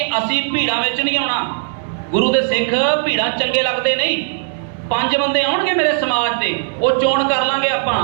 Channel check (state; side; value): silent; left; 66 dB below the other